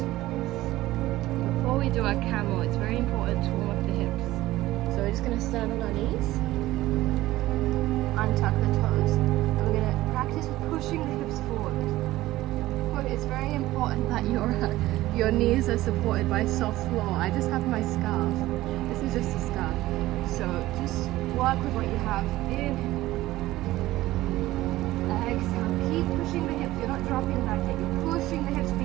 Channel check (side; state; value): left; quieter; 16.6 dB